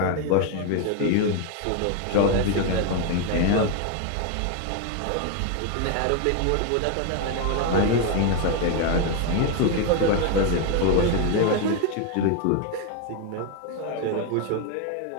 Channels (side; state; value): both; different; correlation 0.01